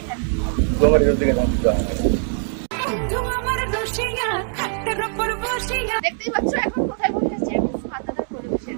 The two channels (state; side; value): silent; left; digital silence